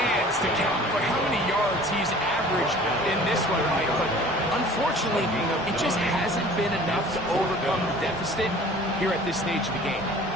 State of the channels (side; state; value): both; normal; correlation 0.47